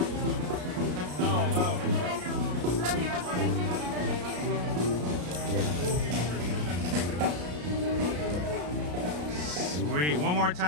Sweet. One more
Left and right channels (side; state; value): left; late; 33 ms